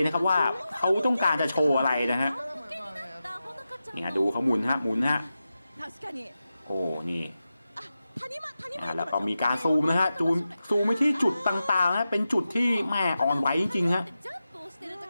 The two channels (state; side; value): inverted; both; correlation -0.92